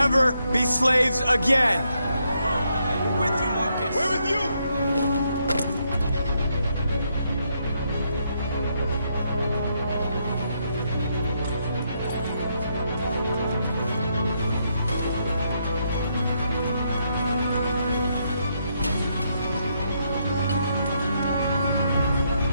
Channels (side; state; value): both; inverted; correlation -0.77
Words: be slaves again! We're with you, Marcus! We're with you!